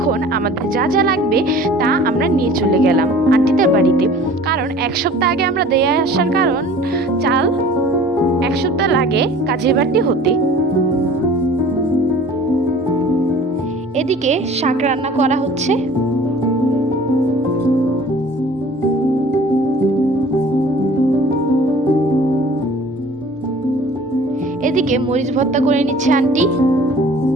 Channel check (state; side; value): normal; both; correlation 0.47